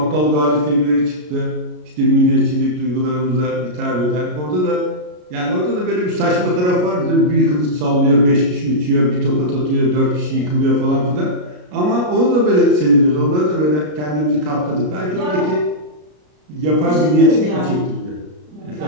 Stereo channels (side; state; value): left; late; 33 ms